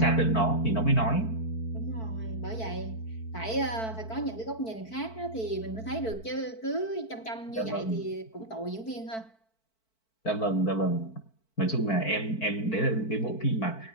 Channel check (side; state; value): right; late; 4.5 ms